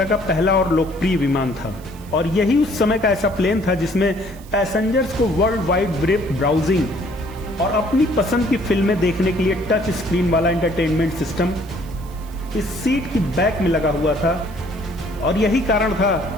का पहला और लोकप्रिय विमान था और यही उस समय का ऐसा प्लेन था जिसमें पैसेंजर्स को वर्ल्ड वाइड वेब ब्राउजिंग और अपनी पसंद की फिल्में देखने के लिए टच स्क्रीन वाला एंटरटेनमेंट सिस्टम इस सीट की बैक में लगा हुआ था और यही कारण था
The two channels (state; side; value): noise; right; hiss, 24 dB below the sound